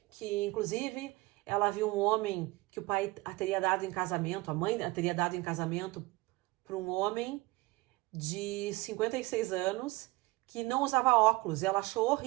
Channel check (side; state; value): left; quieter; 21.6 dB